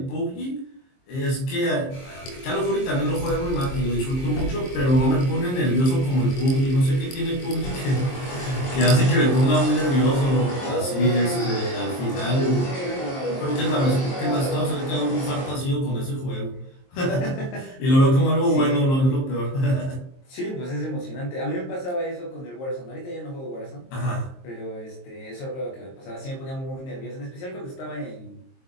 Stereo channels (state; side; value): late; right; 23 ms